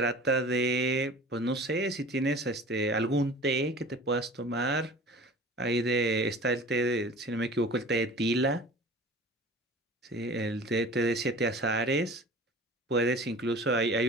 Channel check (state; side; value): normal; both; correlation 0.41